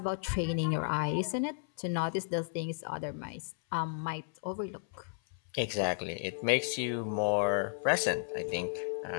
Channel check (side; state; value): right; silent; 55 dB below the other